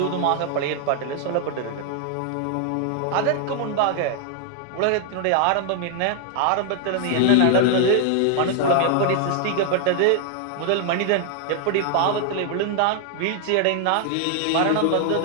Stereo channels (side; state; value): both; different; correlation 0.00